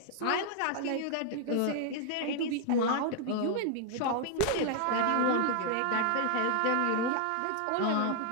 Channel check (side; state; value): both; different; correlation 0.00